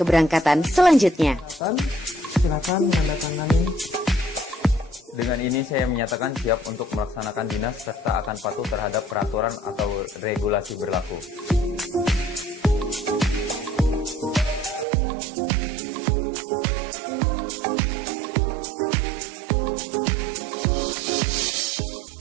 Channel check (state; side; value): drops out; left; at 14.9 s